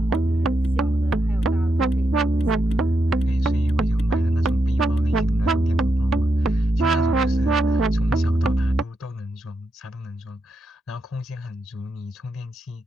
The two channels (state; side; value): normal; both; correlation 0.84